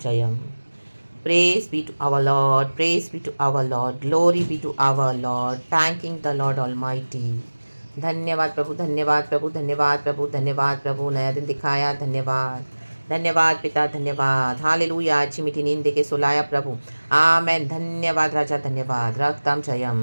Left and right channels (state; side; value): inverted; both; correlation -1.00